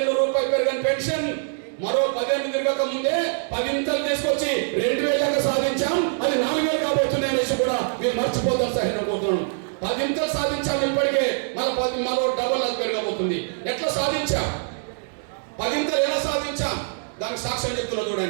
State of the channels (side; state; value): left; silent; 63 dB below the other